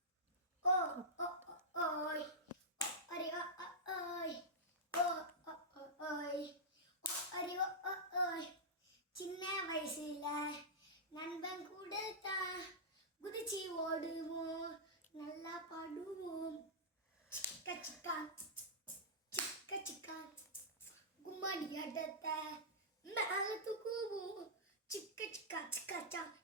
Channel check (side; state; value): both; normal; correlation -0.12